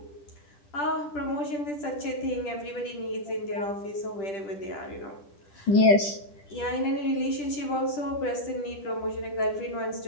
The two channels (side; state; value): right; late; 10 ms